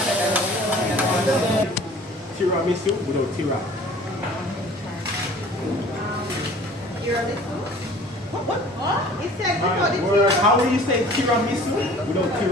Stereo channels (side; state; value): both; normal; correlation 0.48